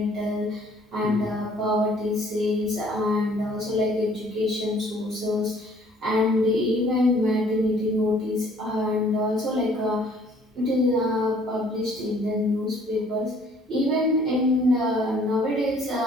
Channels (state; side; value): normal; both; correlation 0.58